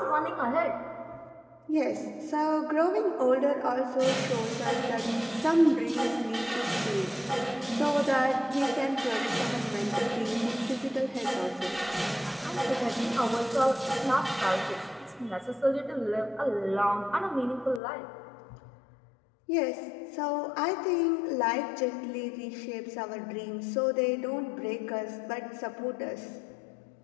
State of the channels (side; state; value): right; drops out; at 17.8 s